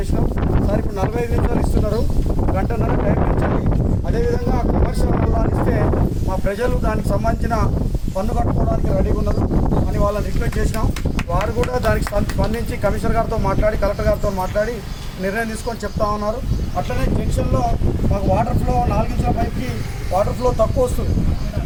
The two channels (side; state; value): both; identical; correlation 1.00